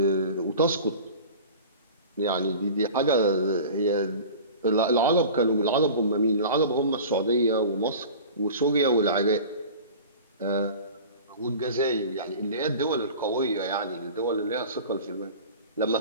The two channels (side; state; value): both; inverted; correlation -0.38